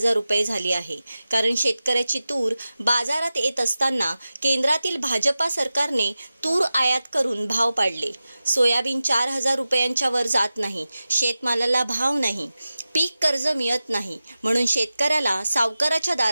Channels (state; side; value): inverted; both; correlation -0.94